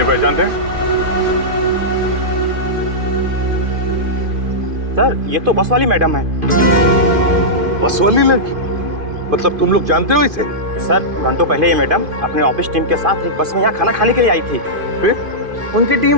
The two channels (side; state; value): left; late; 2.5 ms